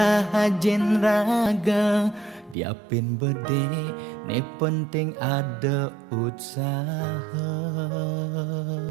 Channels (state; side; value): drops out; left; at 2.6 s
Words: hajen raga. Diapin bede ne penting ada usaha.